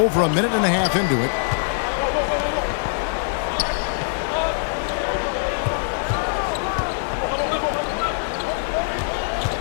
a minute and a half into it.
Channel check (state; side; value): silent; right; digital silence